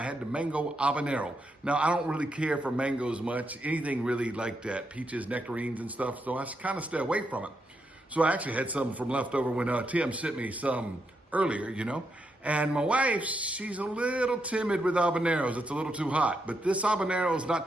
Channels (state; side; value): normal; both; correlation 0.82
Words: had the mango habanero. Now, I don't really care for mangoes much, anything really like that, peaches, nectarines and stuff, so I kind of stay away from it. So I actually had some from leftover when Tim sent me some earlier, you know. And my wife, she's a little timid with habaneros. It's a little too hot, but this habanero is not